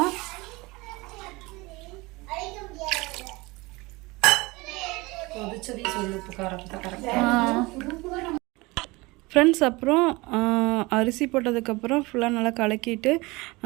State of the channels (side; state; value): left; quieter; 23.3 dB